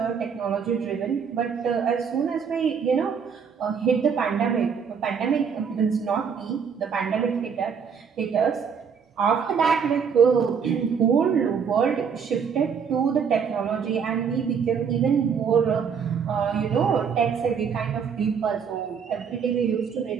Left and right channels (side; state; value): left; quieter; 6.6 dB